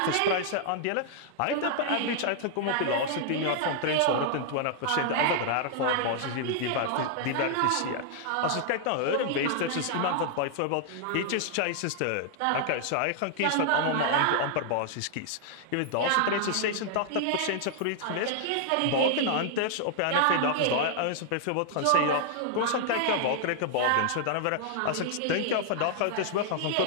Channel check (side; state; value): both; different; correlation -0.01